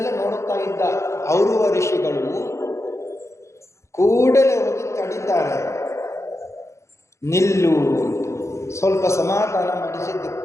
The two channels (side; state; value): right; late; 0.14 ms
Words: ನೋಡುತ್ತಾ ಇದ್ದ ಔರುವ ಋಷಿಗಳು ಕೂಡಲೇ ಹೋಗಿ ತಡಿದ್ದಾರೆ. ನಿಲ್ಲು, ಸ್ವಲ್ಪ ಸಮಾಧಾನ ಮಾಡಿಸಿದ್ದು.